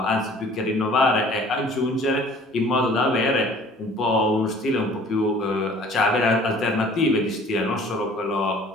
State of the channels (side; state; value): both; normal; correlation 0.51